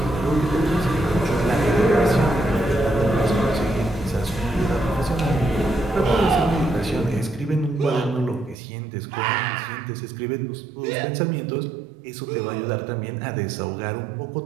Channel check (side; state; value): left; drops out; at 8.6 s